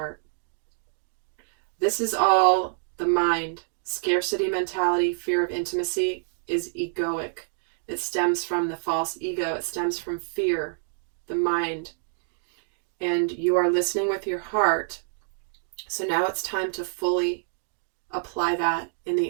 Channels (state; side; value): silent; left; digital silence